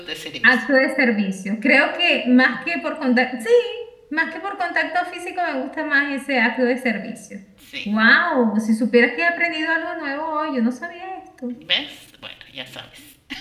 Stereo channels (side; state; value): both; identical; correlation 1.00